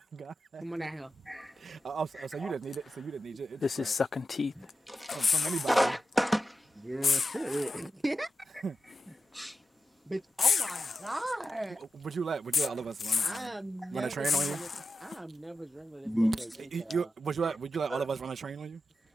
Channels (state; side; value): normal; both; correlation 0.91